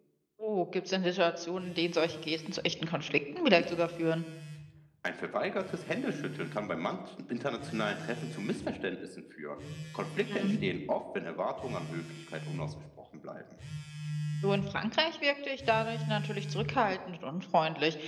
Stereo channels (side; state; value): both; identical; correlation 1.00